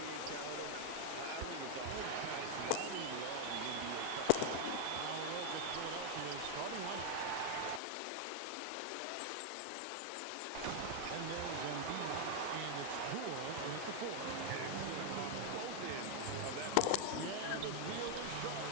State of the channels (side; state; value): both; different; correlation 0.00